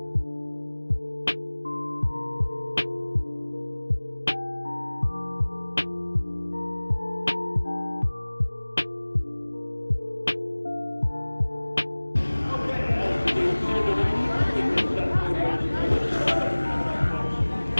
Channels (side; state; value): both; inverted; correlation -1.00